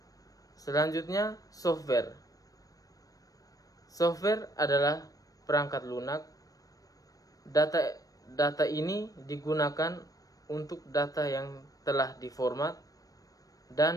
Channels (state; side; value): late; right; 0.17 ms